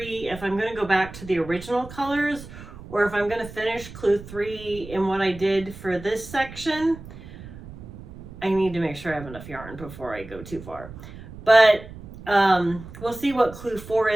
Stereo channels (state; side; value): noise; right; rumble, 15 dB below the sound